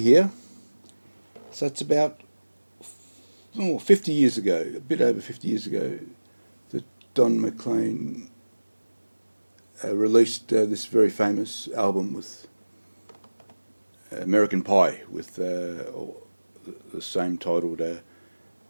here. So it's about 50 years ago, a bit over 50 years ago, that Don McLean released this very famous album with American Pie, with the same titled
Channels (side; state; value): both; inverted; correlation -1.00